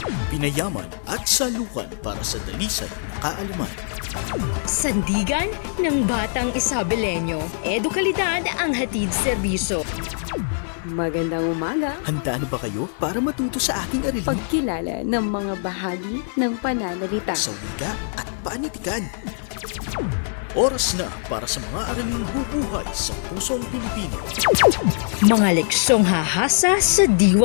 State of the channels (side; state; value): right; silent; digital silence